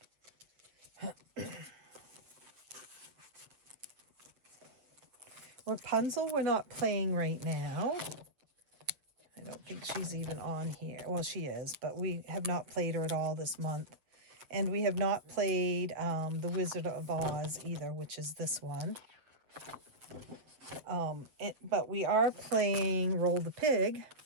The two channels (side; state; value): left; late; 7.8 ms